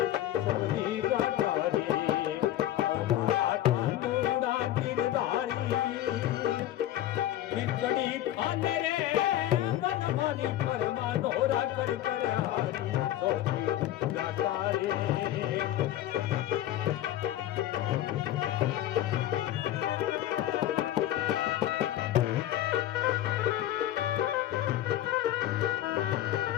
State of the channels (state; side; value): quieter; right; 13.1 dB